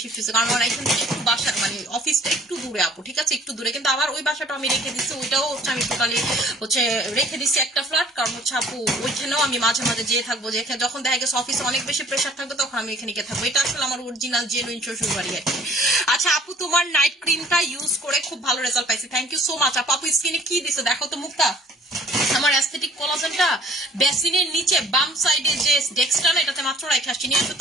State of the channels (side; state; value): both; normal; correlation 0.55